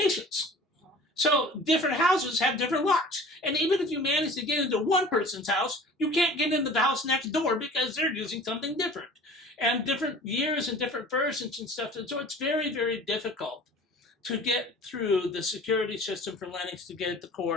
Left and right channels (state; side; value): normal; both; correlation 0.44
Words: So different houses have different locks. And even if you manage to get into one person's house, you can't get into the house next door because they're using something different. And different years and different versions and stuff. And so it's very, very difficult to get through the security system for Linux to get at the